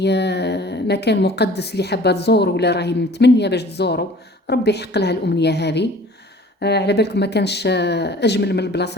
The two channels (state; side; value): normal; both; correlation 0.48